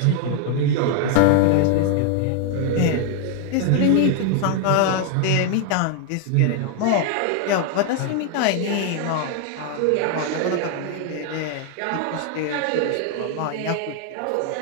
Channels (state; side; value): different; both; correlation 0.00